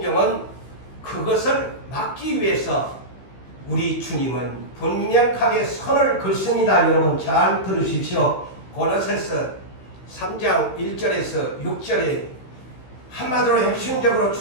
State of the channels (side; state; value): right; late; 15 ms